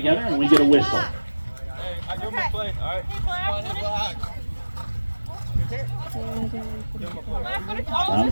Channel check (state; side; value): inverted; both; correlation -1.00